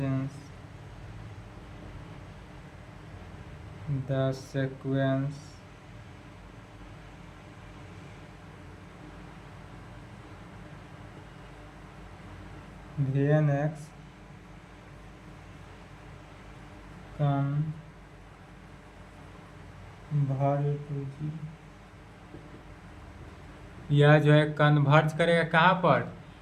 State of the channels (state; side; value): identical; both; correlation 1.00